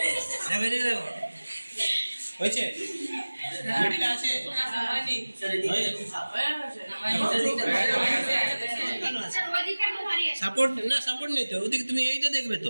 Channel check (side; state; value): both; inverted; correlation -1.00